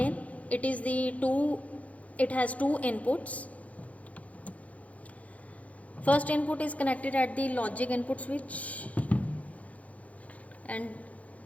it has two inputs. First input is connected at the logic input switch and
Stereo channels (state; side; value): late; right; 0.068 ms